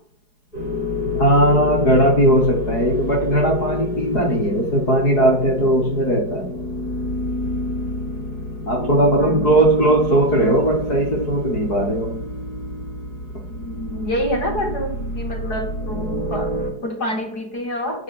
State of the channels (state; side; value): late; right; 4.8 ms